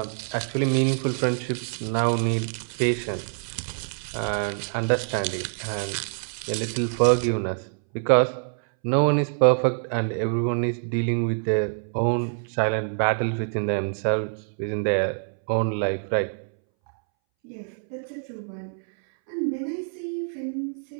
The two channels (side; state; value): left; silent; 61 dB below the other